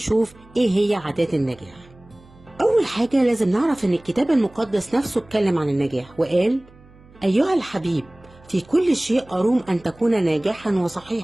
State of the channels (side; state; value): right; noise; hum, 25 dB below the sound